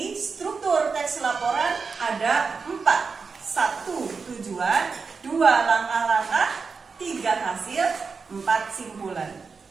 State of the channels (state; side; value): quieter; left; 5.0 dB